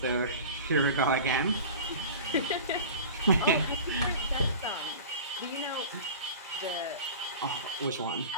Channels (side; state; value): both; inverted; correlation -0.37